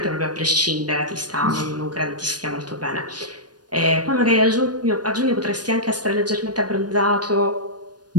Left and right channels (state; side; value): late; left; 0.69 ms